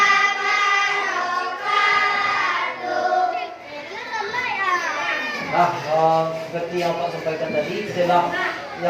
Seperti yang Pak sampaikan tadi, setelah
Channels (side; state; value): both; identical; correlation 1.00